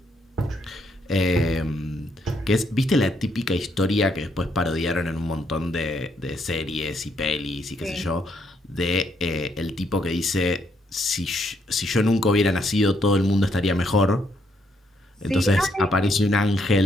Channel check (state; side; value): normal; both; correlation 0.74